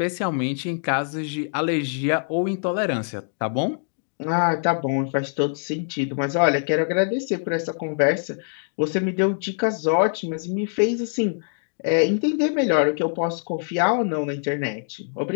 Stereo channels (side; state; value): right; silent; digital silence